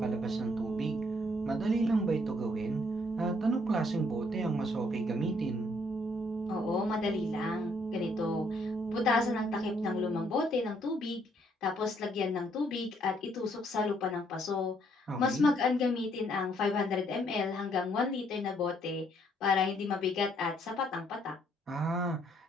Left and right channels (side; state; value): both; normal; correlation 0.68